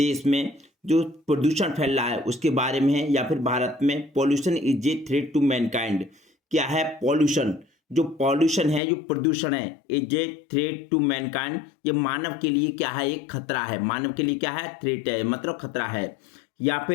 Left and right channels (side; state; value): right; drops out; at 8.8 s